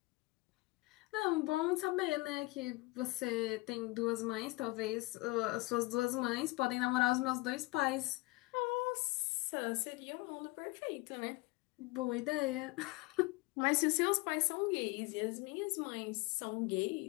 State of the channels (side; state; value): right; quieter; 22.9 dB